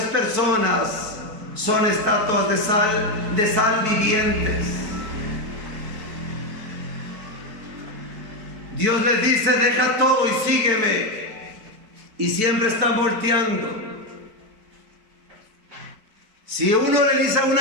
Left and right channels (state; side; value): late; left; 4.6 ms